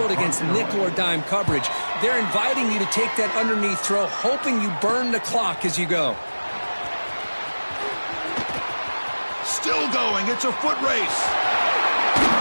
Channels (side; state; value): both; inverted; correlation -1.00